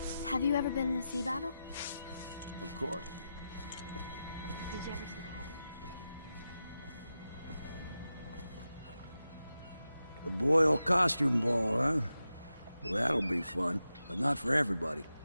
Have you ever been in a sea battle? Of course. Did you ever see pirates? The Boyle costume ball, huh? Well, that'll be fun, but not for everybody.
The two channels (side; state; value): both; inverted; correlation -0.91